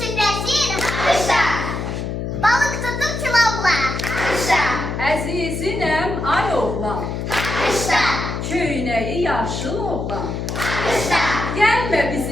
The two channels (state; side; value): noise; left; hum, 4 dB below the sound